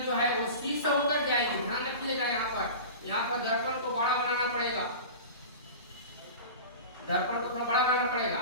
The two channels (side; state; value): both; inverted; correlation -0.33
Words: जो है वो सी से होकर जाएगी। ध्यान रखिएगा, यहाँ पर दर्पण को बड़ा बनाना पड़ेगा, दर्पण को थोड़ा बड़ा बनाना पड़ेगा।